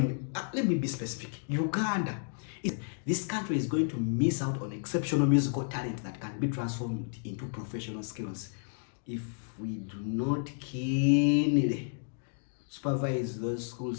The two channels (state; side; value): silent; right; digital silence